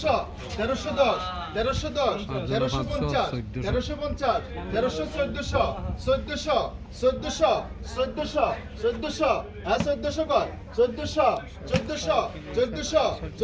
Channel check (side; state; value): both; identical; correlation 1.00